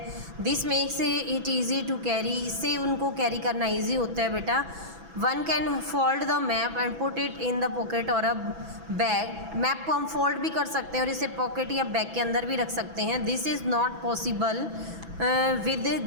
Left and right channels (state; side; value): late; left; 6.0 ms